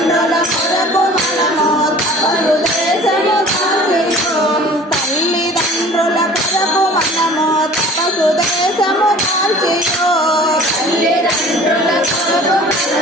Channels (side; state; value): both; normal; correlation 0.46